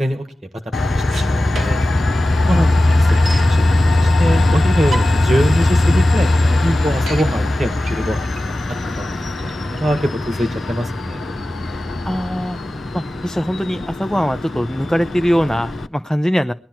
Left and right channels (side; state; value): both; normal; correlation 0.95